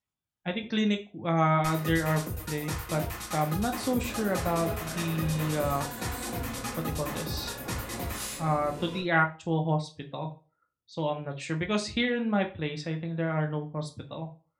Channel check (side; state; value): both; identical; correlation 1.00